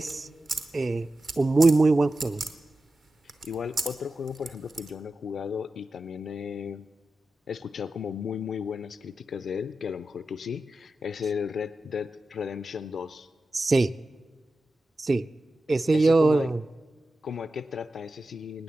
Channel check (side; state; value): both; normal; correlation 0.92